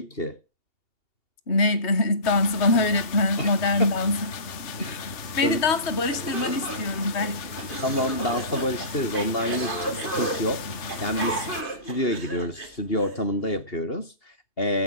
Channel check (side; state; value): right; late; 2.7 ms